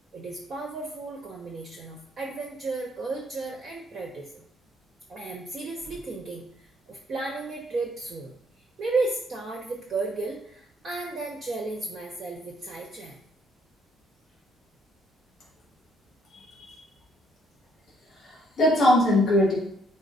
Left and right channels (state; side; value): normal; both; correlation 0.68